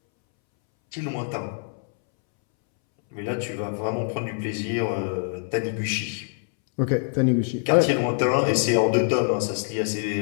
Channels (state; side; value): silent; right; 62 dB below the other